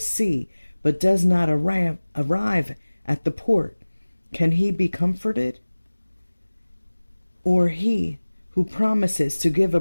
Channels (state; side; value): inverted; both; correlation -1.00